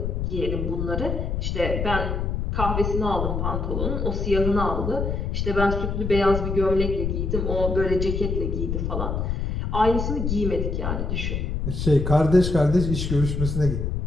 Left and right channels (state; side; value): noise; left; rumble, 1 dB below the sound